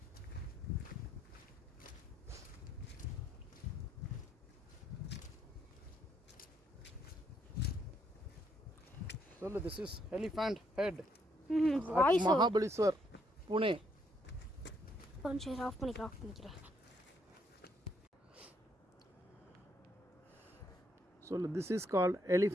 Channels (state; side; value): normal; both; correlation 0.73